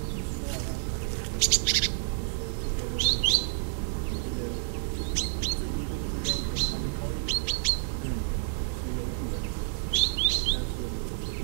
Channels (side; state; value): left; silent; digital silence